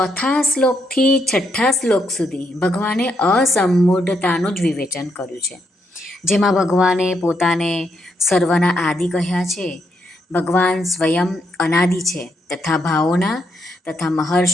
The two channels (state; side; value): normal; both; correlation 0.78